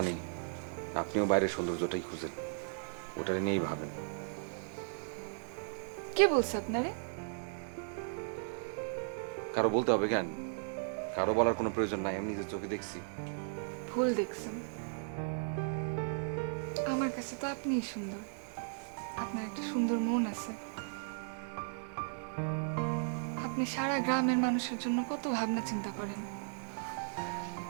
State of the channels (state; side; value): silent; left; digital silence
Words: আপনিও বাইরের সৌন্দর্যটাই খুঁজেন, ওটা নিয়েই ভাবেন। কে বলছে আপনারে? কারো বলতে হবে কেন? কারো বলার কোনো প্রয়োজন নাই, আমি নিজের চোখে দেখছি। ভুল দেখছেন। আমার কাছে তো আপনিই সুন্দর। আপনার একটা সুন্দর মন আছে। আপনি সারা গ্রামের মানুষের জন্য কত ভাবনা চিন্তা করেন।